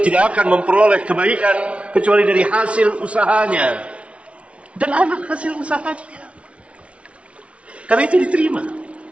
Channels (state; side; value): late; left; 0.062 ms